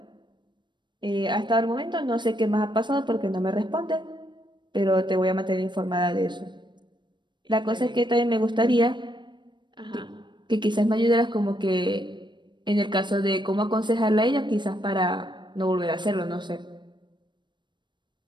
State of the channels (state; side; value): late; left; 0.22 ms